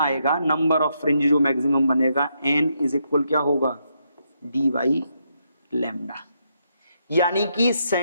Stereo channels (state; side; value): inverted; both; correlation -0.79